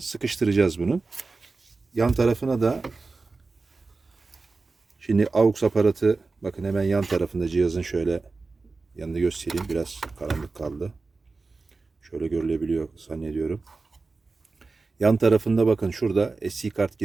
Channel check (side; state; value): left; quieter; 3.9 dB